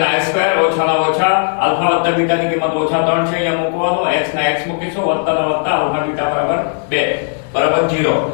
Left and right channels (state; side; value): silent; right; 60 dB below the other